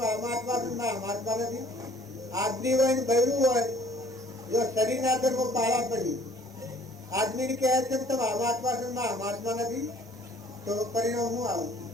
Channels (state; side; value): normal; both; correlation 0.55